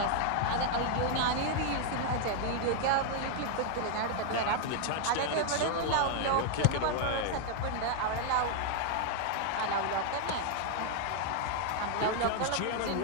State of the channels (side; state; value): both; different; correlation 0.00